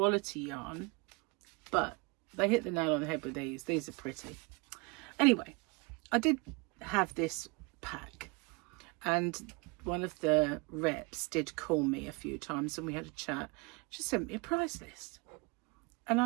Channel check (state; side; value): quieter; left; 28.0 dB